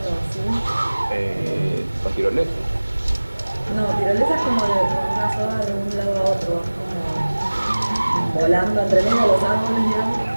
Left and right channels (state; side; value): inverted; both; correlation -1.00